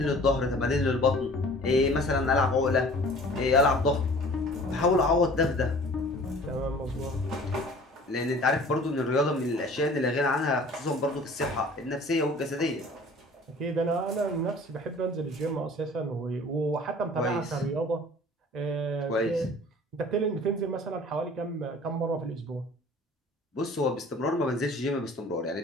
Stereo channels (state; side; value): normal; both; correlation 0.47